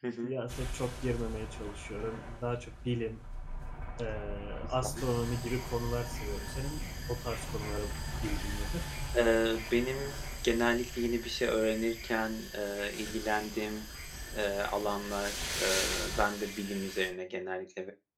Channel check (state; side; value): identical; both; correlation 1.00